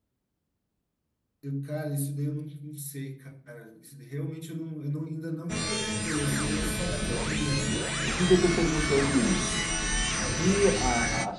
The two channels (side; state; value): both; identical; correlation 1.00